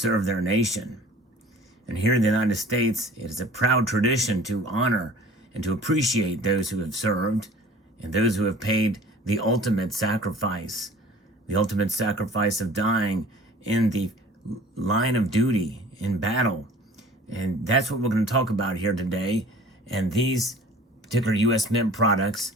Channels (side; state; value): both; normal; correlation 0.47